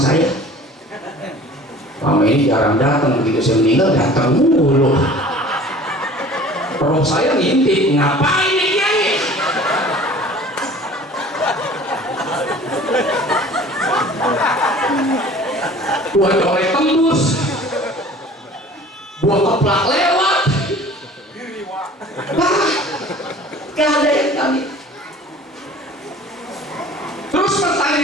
saya. Mama ini jarang datang, begitu saya meninggal datang mulu. Roh saya ngintip, ngapain nih Kiai? Buat colek tembus, buat keplak lewat. Gak ada yang kami. Terus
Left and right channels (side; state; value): both; normal; correlation 0.46